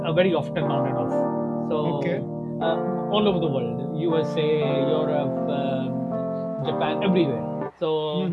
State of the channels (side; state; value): both; identical; correlation 1.00